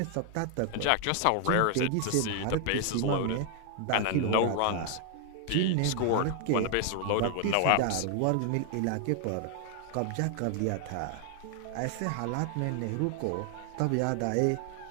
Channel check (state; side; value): different; both; correlation 0.00